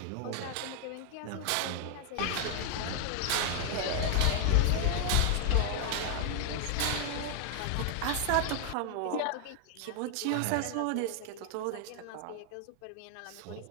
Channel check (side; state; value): both; different; correlation 0.00